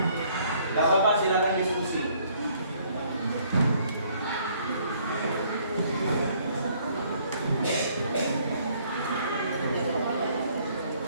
Tidak apa-apa, silakan diskusi.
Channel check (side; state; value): both; inverted; correlation -0.63